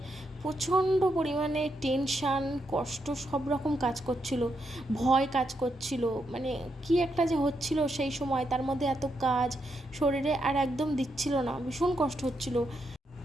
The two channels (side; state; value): both; normal; correlation 0.81